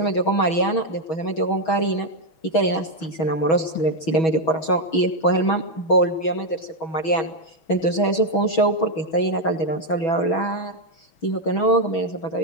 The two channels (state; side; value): late; right; 6.2 ms